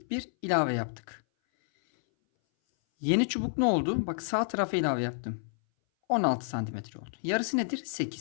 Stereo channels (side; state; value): right; silent; 58 dB below the other